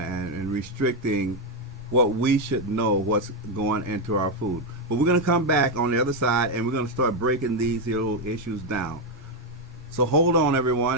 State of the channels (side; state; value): both; normal; correlation 0.04